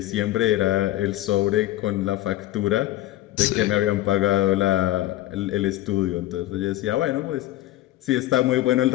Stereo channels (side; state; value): right; quieter; 15.3 dB